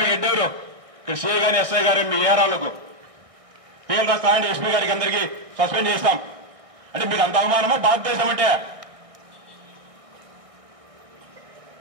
ఎడ్డెవరు? ఇక్కడ సిఐ గాని ఎస్ఐ గారు మీ ఏరాలకు పేర్లు రాస్తామంటే ఎస్పీ గారికి అందరికీ సస్పెండ్ చేస్తాం అంటే మీకు అంత అవమానమా భారతదేశం అంటే?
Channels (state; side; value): late; left; 1.6 ms